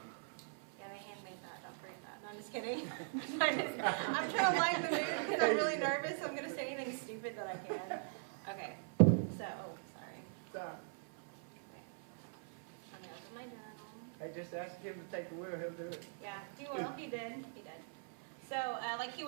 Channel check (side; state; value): left; silent; 50 dB below the other